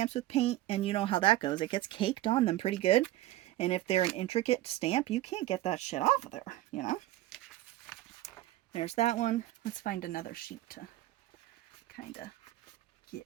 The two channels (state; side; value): quieter; left; 15.6 dB